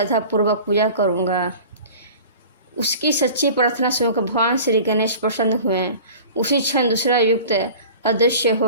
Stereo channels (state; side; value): inverted; both; correlation -0.41